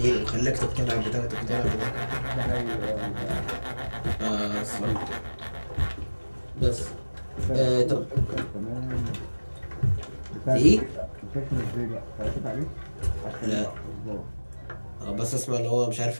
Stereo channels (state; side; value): inverted; both; correlation -1.00